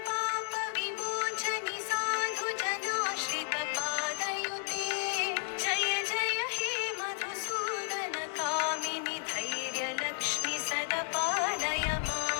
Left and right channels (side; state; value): right; silent; 56 dB below the other